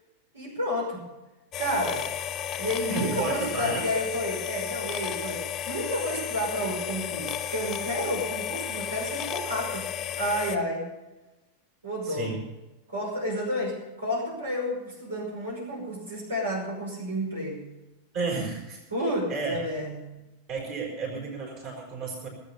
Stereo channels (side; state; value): both; normal; correlation -0.02